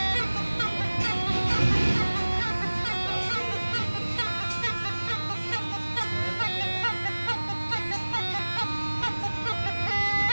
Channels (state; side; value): inverted; both; correlation -1.00